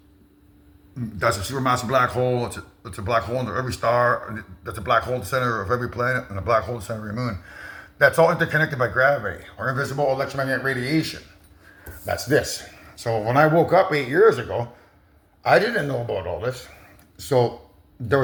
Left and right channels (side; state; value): both; identical; correlation 1.00